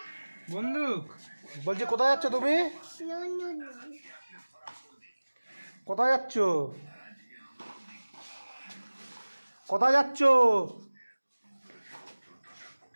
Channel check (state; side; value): inverted; both; correlation -1.00